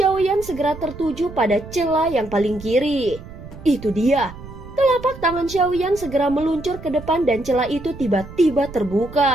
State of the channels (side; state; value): right; noise; rumble, 15 dB below the sound